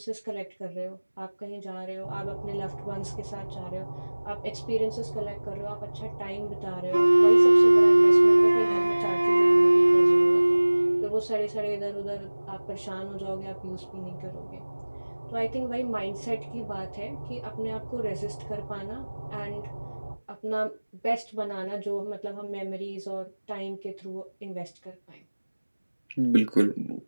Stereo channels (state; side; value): inverted; both; correlation -1.00